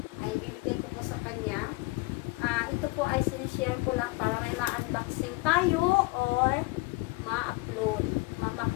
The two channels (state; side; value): quieter; right; 24.2 dB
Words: Ay, ibibigay ko po sa kanya. Ito po ay sinishare ko lang para may ma-unboxing tayo or ma-upload.